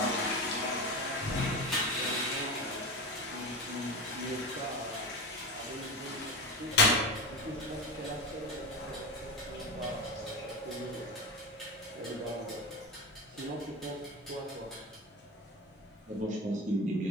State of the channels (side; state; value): both; normal; correlation 0.22